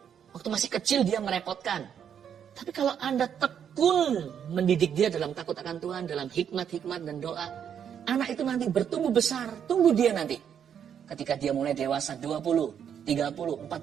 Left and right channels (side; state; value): left; quieter; 8.4 dB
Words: Waktu masih kecil dia merepotkan. Tapi kalau Anda tekun mendidik dia dalam takut akan Tuhan, dalam hikmat-hikmat dan doa, anak itu nanti bertumbuh besar. Tunggu dia nanti. Ketika dia mulai dewasa 20, 30,